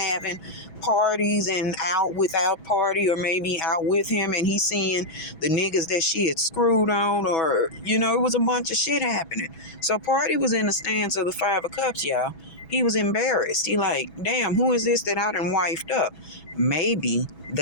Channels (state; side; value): late; right; 6.1 ms